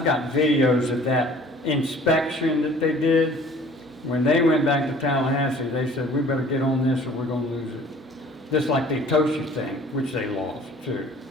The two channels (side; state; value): both; normal; correlation 0.50